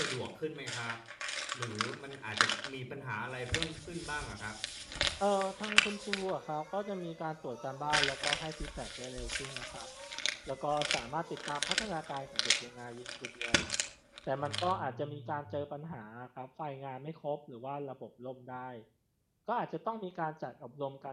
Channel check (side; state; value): both; identical; correlation 1.00